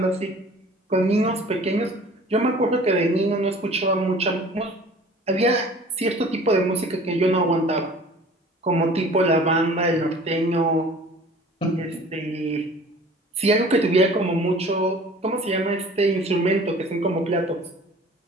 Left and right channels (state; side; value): normal; both; correlation 0.47